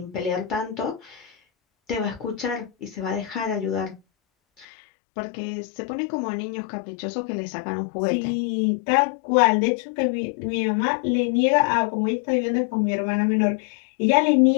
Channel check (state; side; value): drops out; right; at 4.7 s